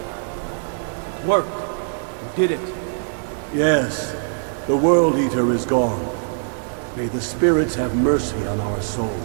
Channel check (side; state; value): left; silent; 59 dB below the other